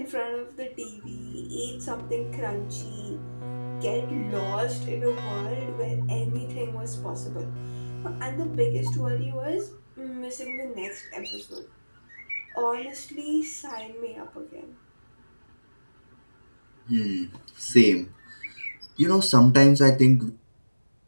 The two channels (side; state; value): both; inverted; correlation -1.00